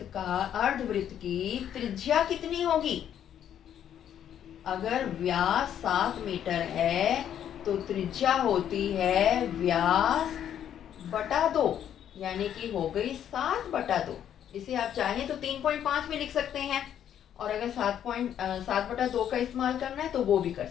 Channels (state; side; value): quieter; right; 9.9 dB